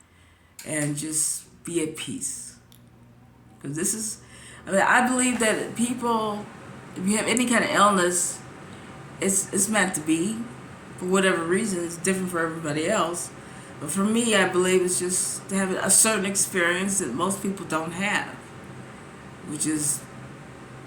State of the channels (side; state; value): both; identical; correlation 1.00